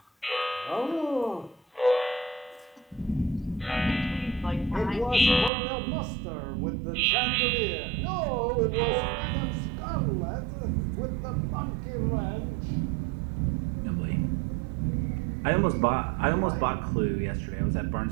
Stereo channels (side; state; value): left; drops out; at 5.5 s